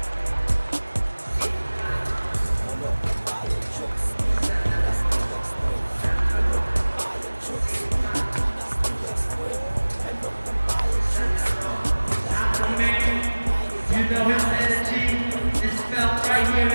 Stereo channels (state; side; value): inverted; both; correlation -1.00